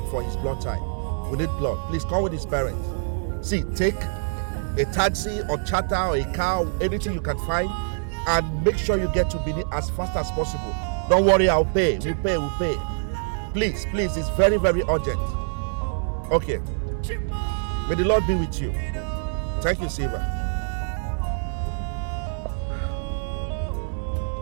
for his blood type. We need blood. Please come with his parents. See, take a taxi or charter or a car, anything you can find, and make sure you get to Benin as fast as possible. Don't worry, I'll pay. We'll pay. Please, it's very, very urgent. Okay. May the Lord be with you. Thank you, Silva.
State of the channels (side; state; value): left; silent; digital silence